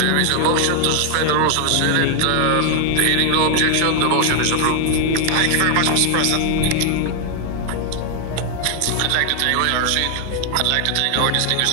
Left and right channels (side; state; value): both; different; correlation 0.00